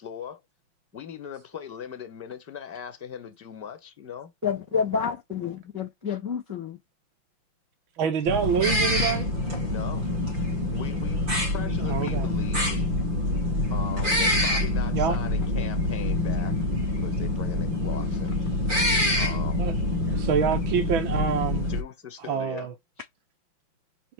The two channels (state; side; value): late; left; 5.7 ms